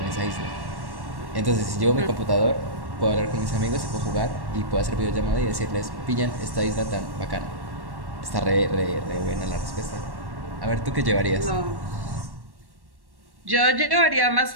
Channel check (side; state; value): left; late; 1.1 ms